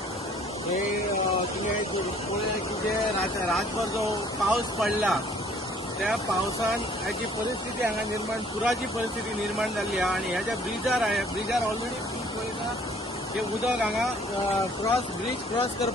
तुवें की जे रातभर जो पावस पडला त्या पावसान हाची परिस्थिती हांगा निर्माण पुराची परिस्थिती निर्माण जाल्ली आहा आनी ह्या ज्या ब्रिजार ऑलरेडी ब्रीज पळयता ते उदक हांगा ब्रीज क्रॉस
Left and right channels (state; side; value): normal; both; correlation 0.57